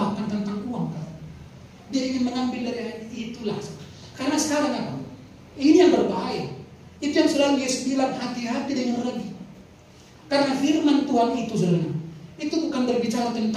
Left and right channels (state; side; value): identical; both; correlation 1.00